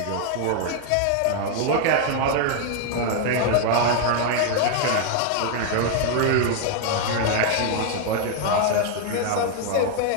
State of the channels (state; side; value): different; both; correlation 0.00